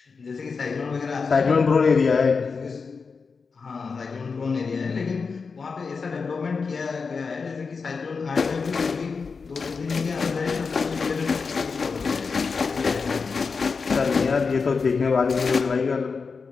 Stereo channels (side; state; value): right; quieter; 5.0 dB